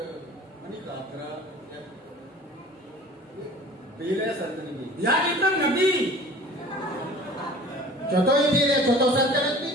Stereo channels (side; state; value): both; normal; correlation 0.44